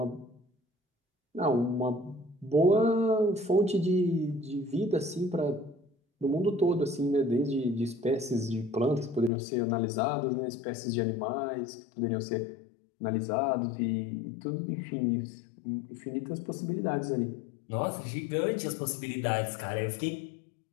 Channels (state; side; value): drops out; right; at 9.3 s